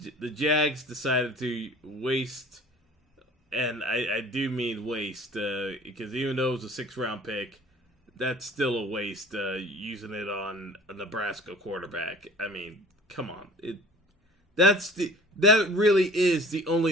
Jags decided to waste, and I do mean waste, because even though it was a 6th round pick, that's still a waste using it on a Nebraska quarterback. I mean, come on. That really is the only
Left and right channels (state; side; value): normal; both; correlation 0.46